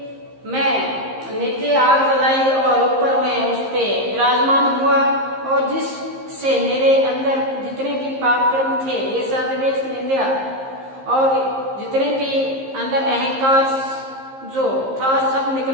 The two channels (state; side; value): late; left; 15 ms